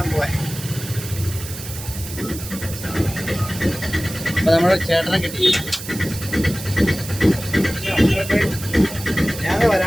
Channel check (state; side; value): noise; right; hiss, 11 dB below the sound